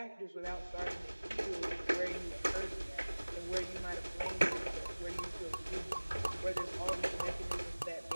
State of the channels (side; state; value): both; inverted; correlation -1.00